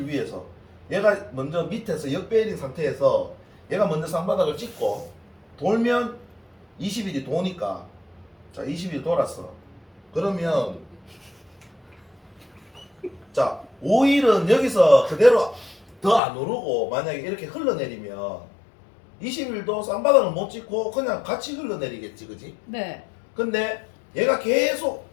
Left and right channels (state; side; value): drops out; right; at 16.2 s